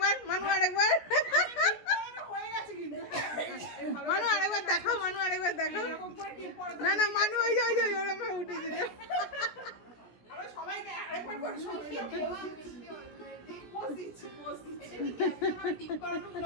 হয়ে গেছে কিন্তু মানু আরেকবার দেখাও না না মানু ওই যে ওরকম উঠে দিল আমরা সবাইকে আরেকবার করে সবাই পোজ দিচ্ছি টিপ করানো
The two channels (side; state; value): right; late; 17 ms